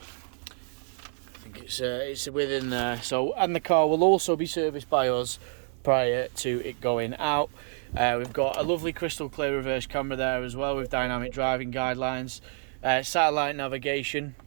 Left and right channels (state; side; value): silent; left; 55 dB below the other